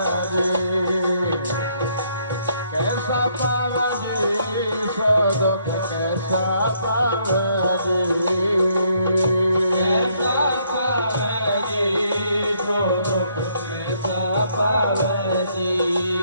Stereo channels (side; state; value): both; inverted; correlation -0.69